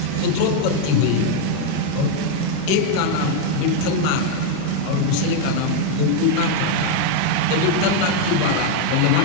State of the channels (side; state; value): both; different; correlation 0.01